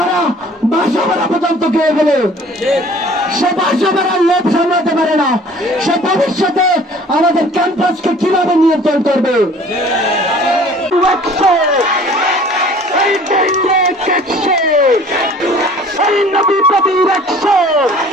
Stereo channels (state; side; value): normal; both; correlation 0.50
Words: বাসা ভাড়া পর্যন্ত খেয়ে গেলে সে বাসা ভাড়ার লোভ সামলাতে পারে না। সে ভবিষ্যতে আমাদের ক্যাম্পাসকে কিভাবে নিয়ন্ত্রণ করবে?